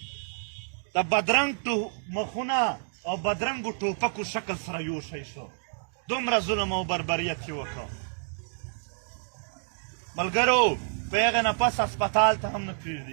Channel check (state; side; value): silent; left; digital silence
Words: د بدرنګ مخونه او بدرنګو ټوپکو شکل سره یو شی شو دومره ظلم او بربریت یې وکړ ملګرو په هغې نه پس هسپتال ته هم نه